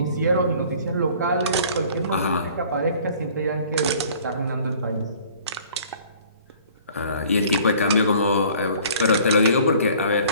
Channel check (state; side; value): inverted; both; correlation -0.52